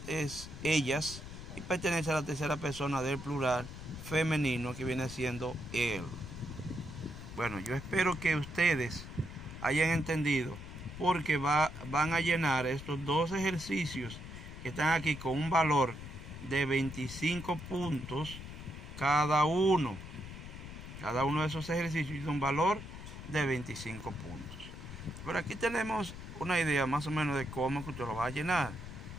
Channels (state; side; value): noise; left; rumble, 11 dB below the sound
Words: es ellas y pertenece a la tercera persona del plural femenino, que viene siendo él. Bueno, yo espero que ustedes hayan entendido, porque van a llenar estos 2 ejercicios que están aquí con un valor de 25 puntos cada uno. Cada uno de esos ejercicios tiene un valor de 25 puntos. Pero aquí tenemos una idea más o menos de cómo que usted lo va a llenar.